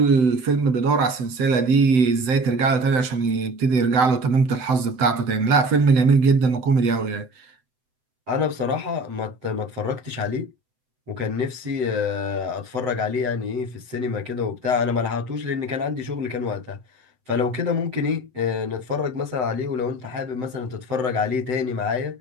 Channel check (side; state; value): left; late; 7.8 ms